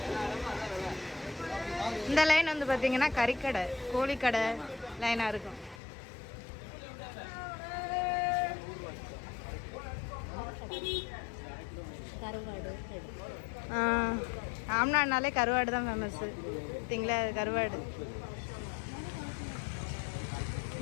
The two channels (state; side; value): drops out; right; at 5.8 s